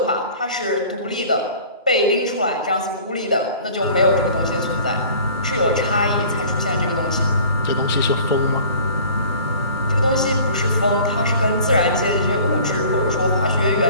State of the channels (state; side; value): inverted; both; correlation -0.46